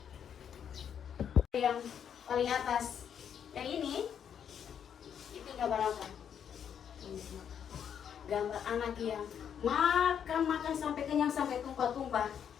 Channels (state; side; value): quieter; right; 8.4 dB